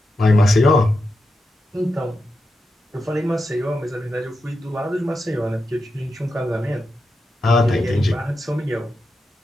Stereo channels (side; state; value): both; normal; correlation 0.88